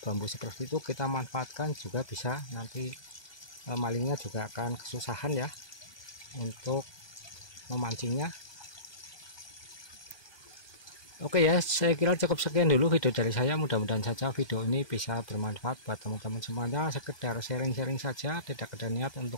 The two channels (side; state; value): right; late; 1.2 ms